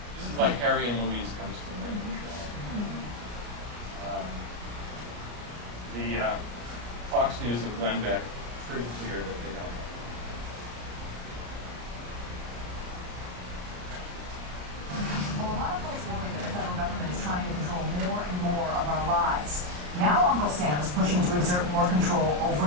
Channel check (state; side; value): late; left; 34 ms